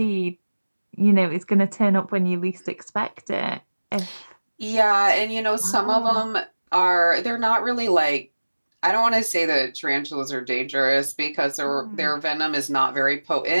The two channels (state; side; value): inverted; both; correlation -1.00